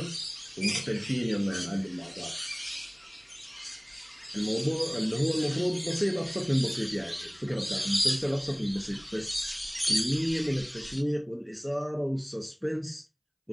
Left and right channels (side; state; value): both; identical; correlation 1.00